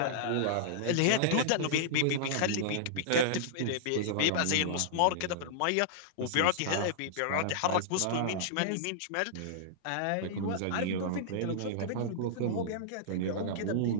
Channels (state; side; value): different; both; correlation -0.01